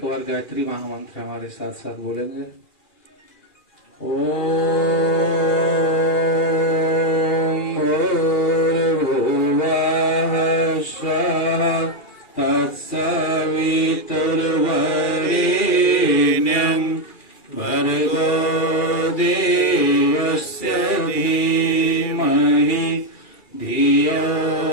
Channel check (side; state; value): right; late; 2.4 ms